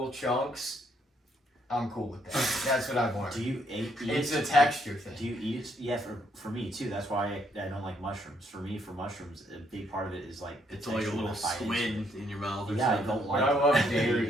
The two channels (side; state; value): both; normal; correlation 0.71